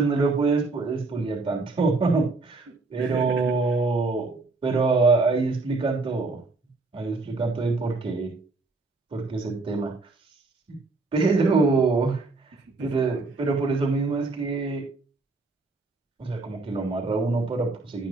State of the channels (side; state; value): left; quieter; 3.6 dB